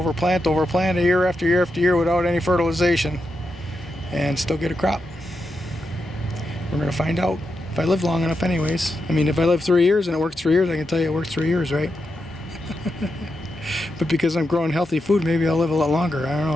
plant over plant year after year after year without any fertilization and still get a crop. We're going to find out if I live long enough anyways. I mean, if I live 3 years and it works 3 years, I can tell you it worked 3 years, right? But because I'm growing healthy food, maybe I'll live a lot longer. I don't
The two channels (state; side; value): normal; both; correlation 0.86